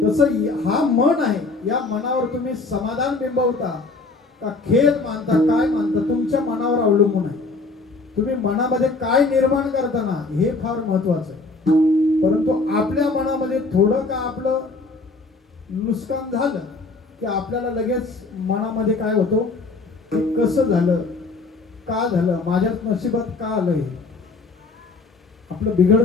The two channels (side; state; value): right; quieter; 3.7 dB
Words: हा मन आहे, या मनावर तुम्ही समाधान बिंबवता का खेद मानता, काय मानता, तुमच्या मनावर अवलंबून आहे. तुम्ही मनामध्ये काय निर्माण करताना हे फार महत्वाचं आहे. परंतु आपल्या मनामध्ये थोडं का आपलं नुकसान झालं की आपल्याला लगेच मनामध्ये काय होतं, की कसं झालं, का झालं, माझ्या नशिबात का आलं, हे आपलं